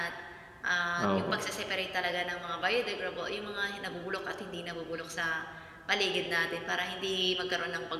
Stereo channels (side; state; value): both; identical; correlation 1.00